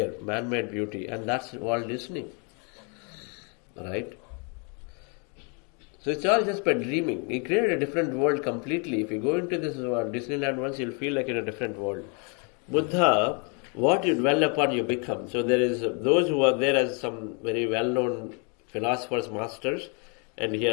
man-made beauty, and that's Walt Disney, right? So it's all just by dreaming. He created a different world completely. If you go into this Disneyland once, you'll feel like in a different world. Buddha, what you dwell upon, you become. So there is those who are there as some very well-known philosophers, masters, and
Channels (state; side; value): quieter; right; 36.0 dB